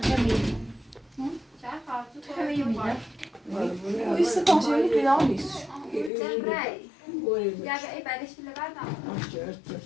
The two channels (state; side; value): drops out; right; at 6.1 s